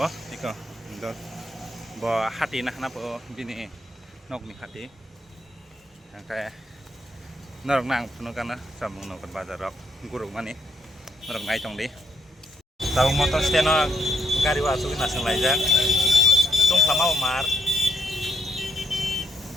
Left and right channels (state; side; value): normal; both; correlation 0.77